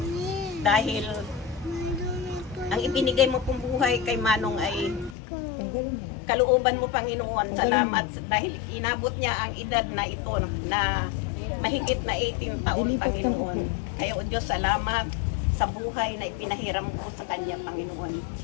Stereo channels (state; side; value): drops out; right; at 5.2 s